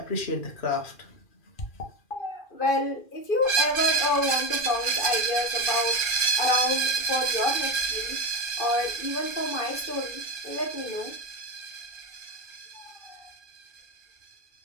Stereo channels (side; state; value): right; late; 2.4 ms